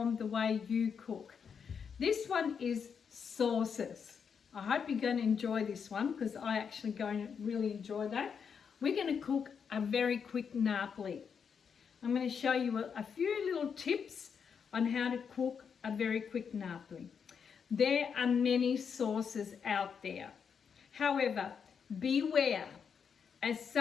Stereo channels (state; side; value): quieter; right; 6.7 dB